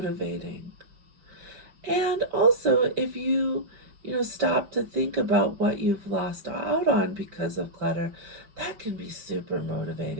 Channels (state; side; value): late; left; 5.2 ms